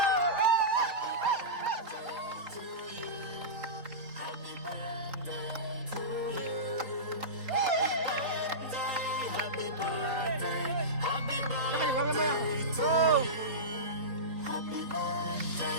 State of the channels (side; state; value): left; late; 4.3 ms